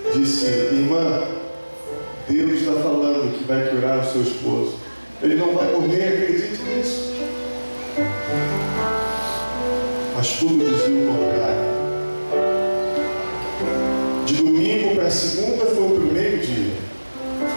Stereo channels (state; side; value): inverted; both; correlation -1.00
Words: disse: irmã, Deus está falando que vai curar o seu esposo. Ele não vai morrer, acredite nisso. Mas tudo dizia o contrário. De domingo para segunda foi o primeiro dia.